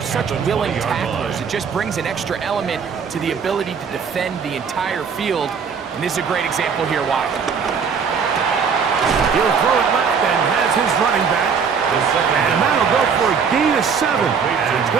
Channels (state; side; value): quieter; left; 6.2 dB